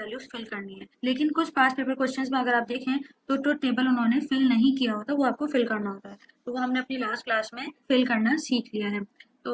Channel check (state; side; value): identical; both; correlation 1.00